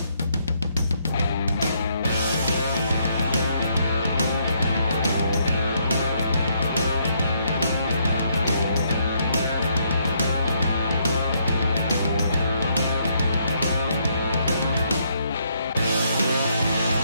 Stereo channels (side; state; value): both; inverted; correlation -0.73